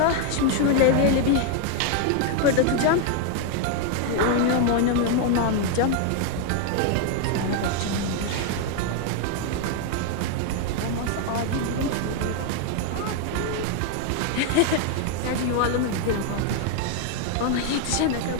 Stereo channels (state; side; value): different; both; correlation 0.01